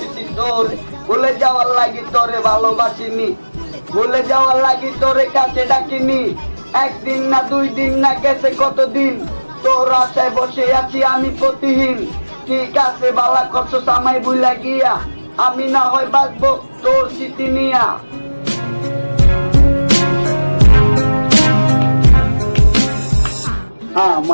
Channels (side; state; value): both; inverted; correlation -1.00